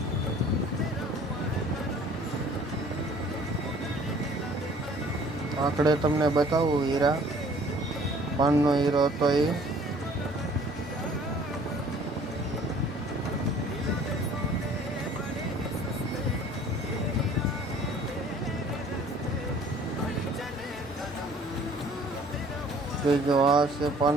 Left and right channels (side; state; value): both; normal; correlation 0.53